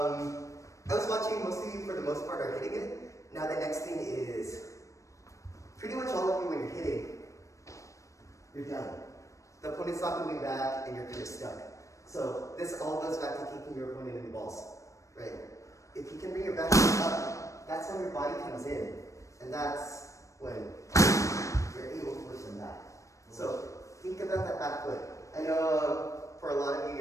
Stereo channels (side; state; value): right; late; 0.15 ms